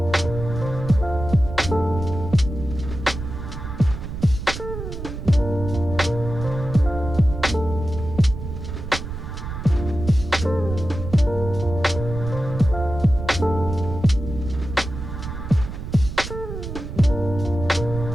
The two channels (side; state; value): right; noise; rumble, 8 dB below the sound